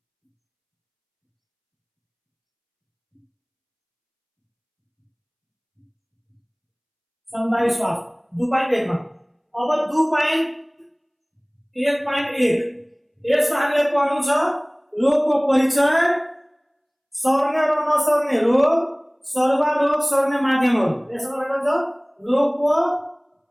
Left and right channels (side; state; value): both; identical; correlation 1.00